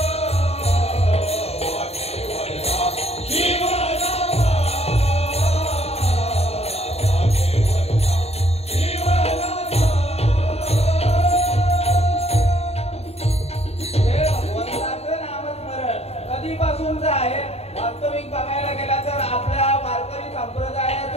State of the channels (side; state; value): right; late; 0.30 ms